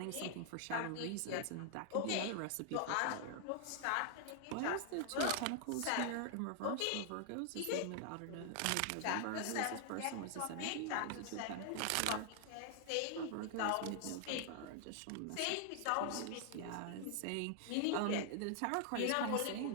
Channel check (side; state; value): both; different; correlation 0.00